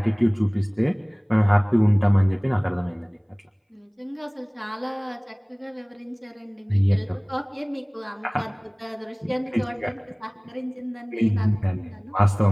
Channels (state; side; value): identical; both; correlation 1.00